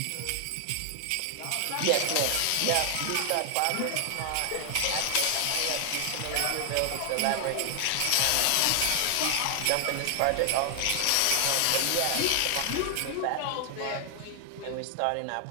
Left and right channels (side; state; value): both; different; correlation 0.00